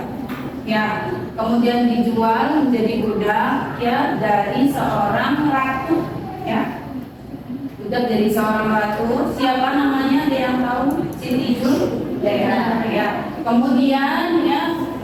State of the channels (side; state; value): both; identical; correlation 1.00